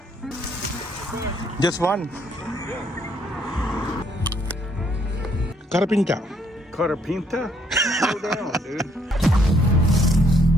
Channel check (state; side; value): normal; both; correlation 0.68